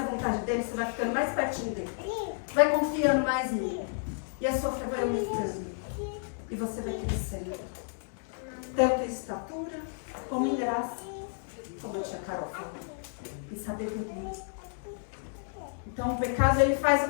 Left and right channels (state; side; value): silent; right; digital silence